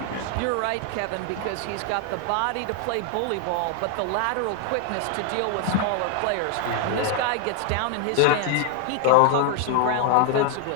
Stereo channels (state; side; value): different; both; correlation 0.00